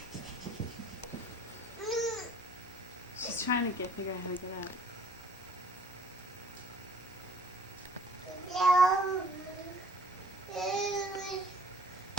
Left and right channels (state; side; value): normal; both; correlation 0.55